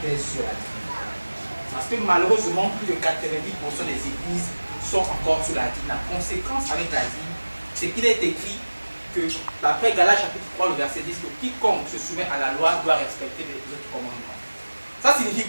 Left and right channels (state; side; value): inverted; both; correlation -1.00